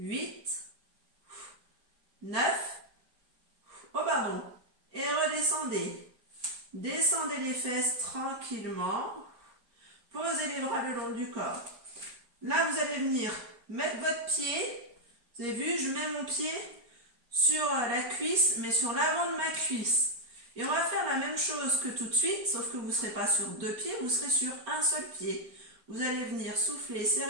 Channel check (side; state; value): left; late; 4.3 ms